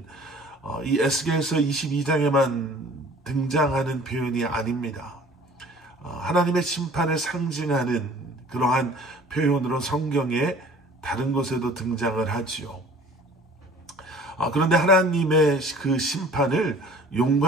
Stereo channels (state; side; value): normal; both; correlation 0.48